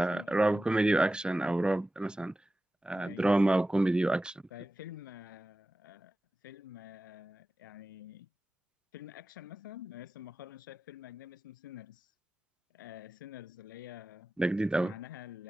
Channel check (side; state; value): both; normal; correlation 0.95